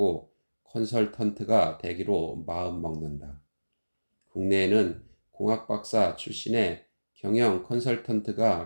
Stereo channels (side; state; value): both; inverted; correlation -1.00